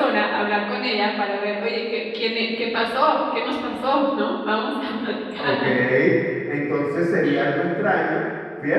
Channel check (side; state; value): both; identical; correlation 1.00